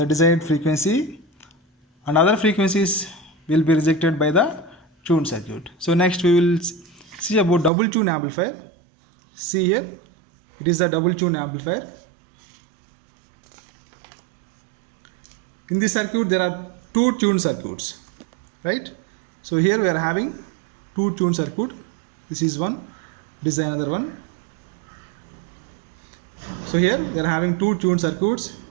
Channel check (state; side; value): drops out; left; at 7.7 s